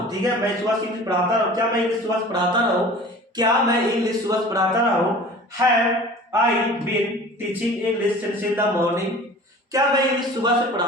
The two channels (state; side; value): normal; both; correlation 0.42